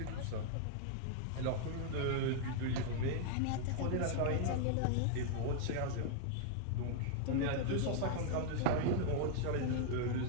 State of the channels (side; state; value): both; different; correlation -0.01